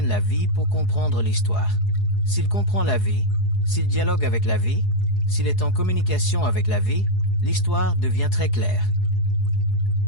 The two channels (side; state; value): right; late; 4.7 ms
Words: la vie pour comprendre l'histoire. S'il comprend la vie, s'il dialogue avec la vie, s'il est en communication avec la vie, l'histoire devient très claire.